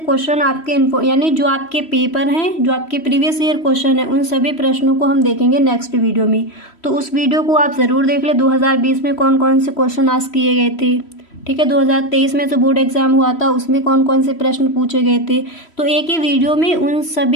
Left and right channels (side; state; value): right; late; 3.1 ms